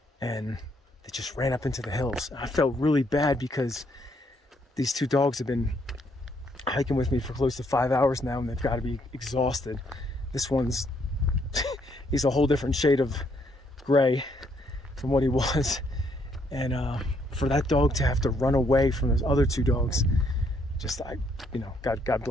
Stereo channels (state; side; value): normal; both; correlation 0.71